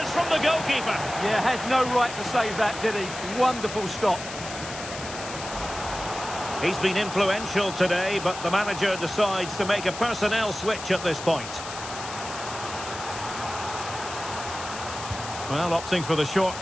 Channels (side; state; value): left; noise; hiss, 10 dB below the sound